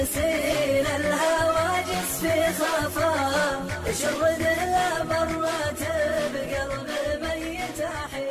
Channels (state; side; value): identical; both; correlation 1.00